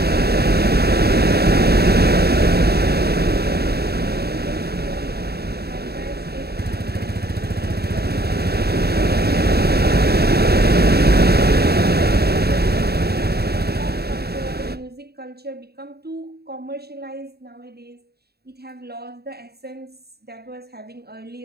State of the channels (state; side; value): late; left; 0.46 ms